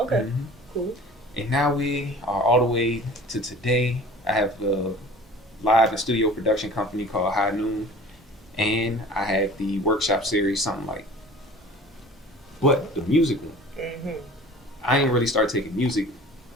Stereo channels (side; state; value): both; normal; correlation 0.43